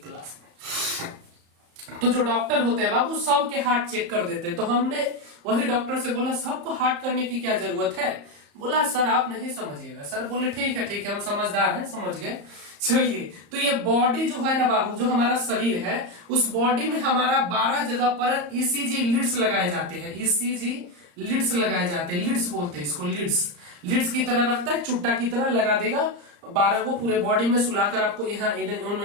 क्लास में। तो जो डॉक्टर होते हैं बाबू, सबके हार्ट चेक कर देते हैं। तो हमने वही डॉक्टर से बोला सबको हार्ट करने की क्या जरूरत है। बोला सर आप नहीं समझिएगा। सर बोले ठीक है हम समझदार हैं, समझ गए। चलिए, तो ये बॉडी जो है ना बाबू, जो हमारा शरीर है, उस बॉडी में हमारा 12 जगह पर ईसीजी लीड्स लगाए जाते हैं। ईसीजी लीड्स लगाए जाते हैं, लीड्स बोलते हैं इसको, लीड्स की तरह रखता है, चुट्टा की तरह लगा देगा 12 को पूरे बॉडी में सुलाकर आपको यहाँ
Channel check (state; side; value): late; left; 34 ms